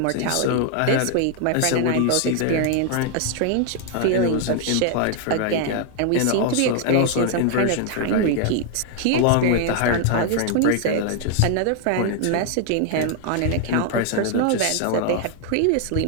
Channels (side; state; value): both; different; correlation 0.00